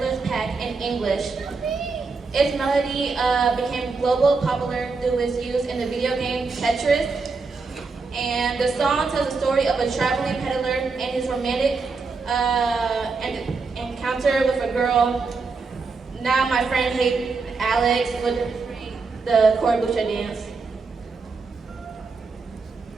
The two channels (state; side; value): quieter; left; 4.4 dB